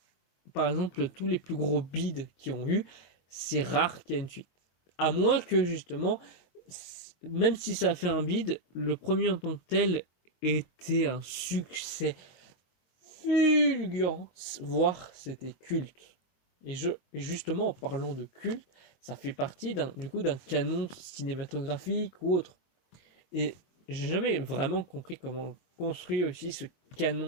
par exemple, tous les plus gros bids qui ont eu, c'est rare qu'il y ait une suite. À moins que, justement, même si ça a fait un bid, le premier en tant que tel était un succès fulgurant, voire c'était culte. Et justement, en parlant de culte, ça fait partie d'un canon cinématographique ou autre. Et j'ai jamais vraiment compris comment construire aussi ce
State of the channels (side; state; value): right; late; 23 ms